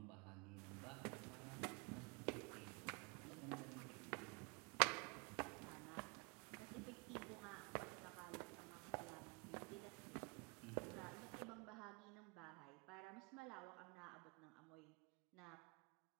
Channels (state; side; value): quieter; left; 31.5 dB